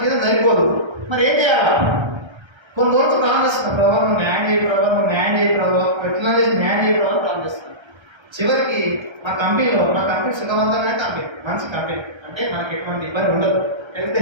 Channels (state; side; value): late; left; 1.3 ms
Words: జీతం సరిపోదు. మరి ఏం చేయాలా? కొన్ని రోజులు ప్లాన్ చేస్తున్నాను. ప్రభావ నువ్వు న్యాయం చేయి, ప్రభావ నువ్వు న్యాయం చేయి, ప్రభావ ఎట్లా చేసి న్యాయం చేయి ప్రభావ ప్లాన్ చేస్తున్నాను. చివరికి మా కంపెనీ సుఖవంతమైన కంపెనీ, మంచి కంపెనీ. అంటే మనకి ఎటువంటి ఇబ్బంది ఉండదు, హెల్త్